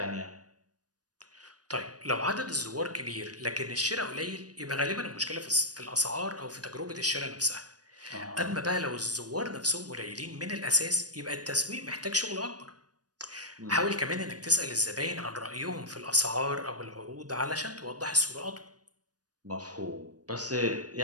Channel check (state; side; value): late; left; 0.68 ms